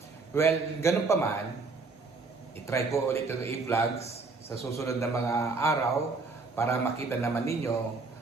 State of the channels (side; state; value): left; quieter; 4.0 dB